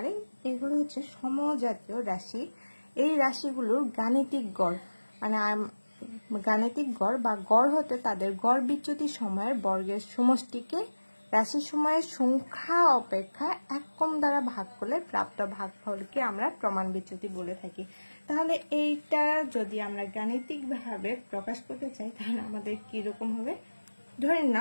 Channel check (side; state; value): both; inverted; correlation -1.00